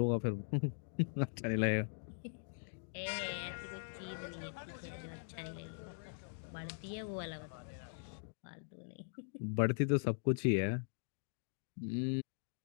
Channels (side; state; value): right; silent; digital silence